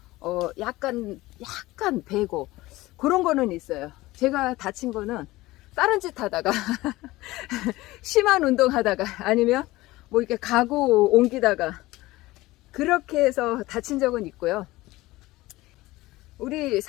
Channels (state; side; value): quieter; right; 18.8 dB